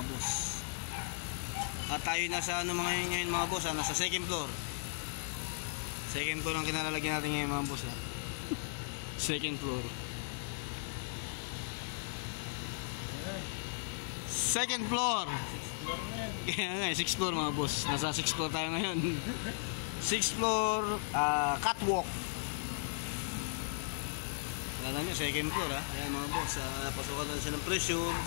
boss. At tayo nasa ano ngayon mga boss ha, nasa second floor. Second floor ang kinalalagyan natin ngayon mga boss ha. Second floor. Second floor. Kaya nga, 6th floor mga boss. Nasa 6th floor tayo ngayon. 6th floor, catwalk. Alam nyo, second floor ha. Ayan mga boss, napasukan natin siya ng pressure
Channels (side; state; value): right; silent; digital silence